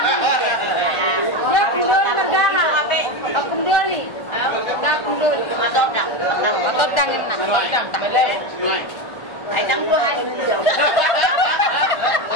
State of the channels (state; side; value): late; right; 1.4 ms